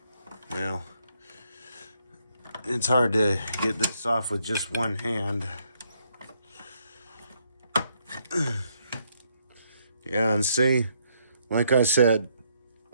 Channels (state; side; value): inverted; both; correlation -0.73